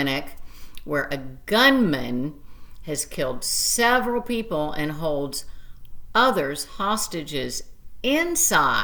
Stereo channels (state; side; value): identical; both; correlation 1.00